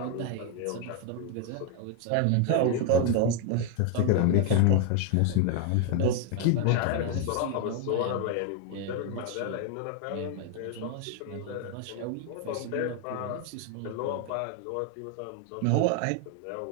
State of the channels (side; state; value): both; different; correlation 0.01